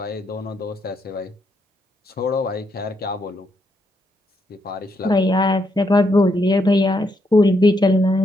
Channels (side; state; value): both; normal; correlation 0.78